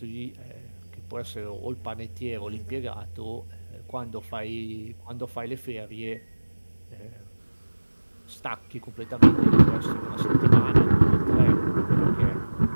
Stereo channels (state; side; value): inverted; both; correlation -1.00